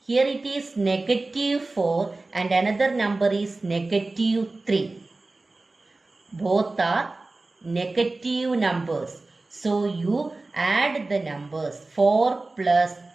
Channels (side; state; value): left; quieter; 3.2 dB